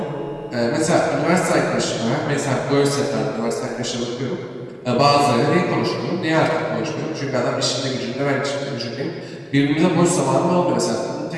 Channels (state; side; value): identical; both; correlation 1.00